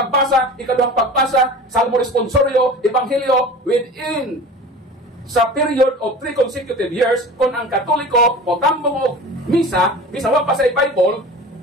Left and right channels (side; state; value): both; normal; correlation 0.37